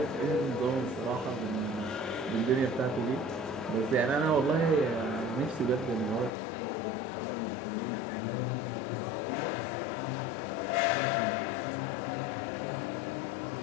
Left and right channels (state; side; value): drops out; right; at 6.3 s